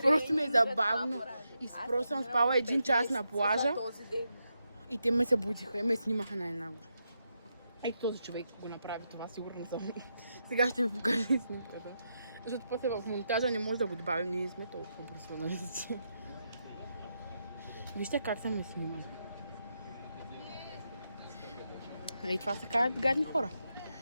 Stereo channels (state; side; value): inverted; both; correlation -0.84